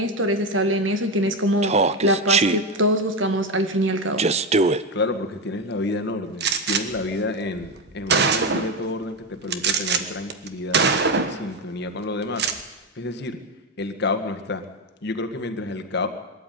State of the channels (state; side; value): normal; both; correlation 0.13